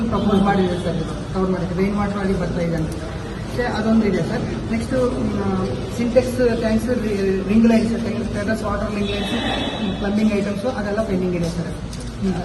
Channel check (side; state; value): both; identical; correlation 1.00